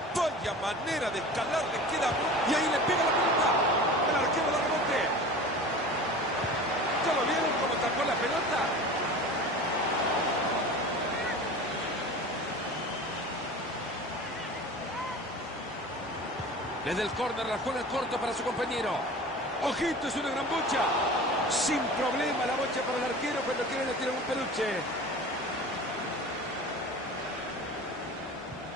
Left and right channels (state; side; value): normal; both; correlation 0.37